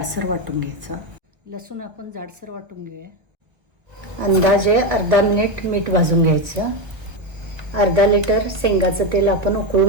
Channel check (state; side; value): late; left; 1.4 ms